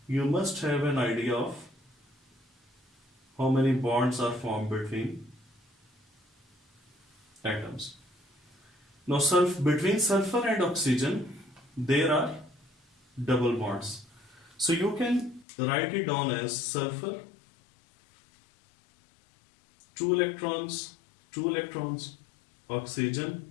you must have an idea of how many bonds are formed between atoms. Now between sulfur and oxygen, there are double bonds. So you can write it down as sulfur, 2 electrons, oxygen,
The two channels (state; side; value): drops out; right; at 15.5 s